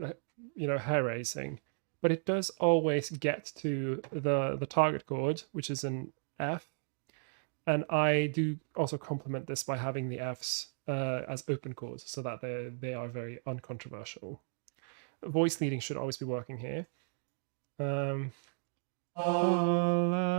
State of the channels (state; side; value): silent; left; digital silence